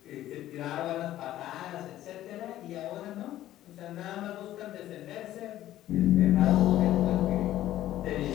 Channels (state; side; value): quieter; right; 13.6 dB